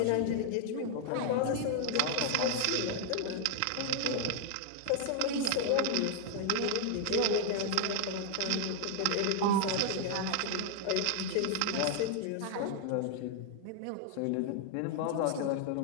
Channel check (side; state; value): both; different; correlation 0.00